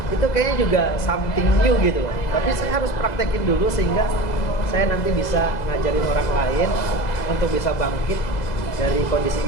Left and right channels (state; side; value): late; right; 2.0 ms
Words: itu kayaknya juga something new gitu. Tapi saya harus praktekin dulu sehingga saya nanti bisa ngajarin orang lain untuk bisa bangkit dari